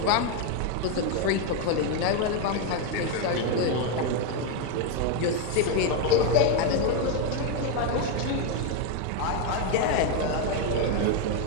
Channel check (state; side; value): different; both; correlation 0.02